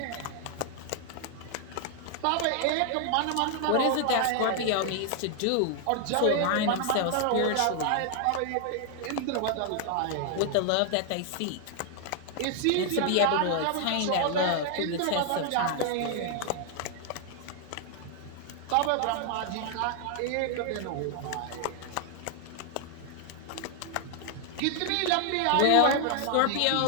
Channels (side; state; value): both; different; correlation 0.00